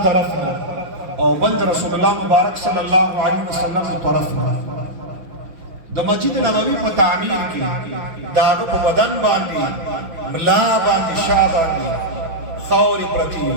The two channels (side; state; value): left; late; 6.0 ms